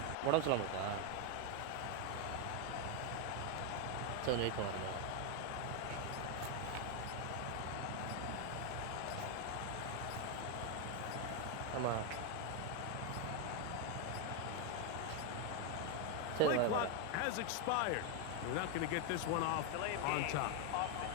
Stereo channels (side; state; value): both; different; correlation 0.01